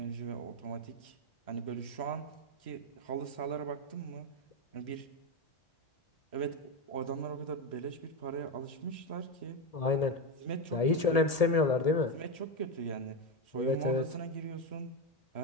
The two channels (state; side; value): late; right; 1.8 ms